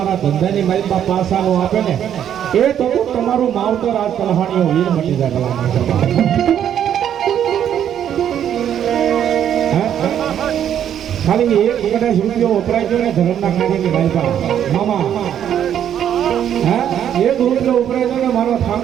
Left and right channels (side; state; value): left; quieter; 9.8 dB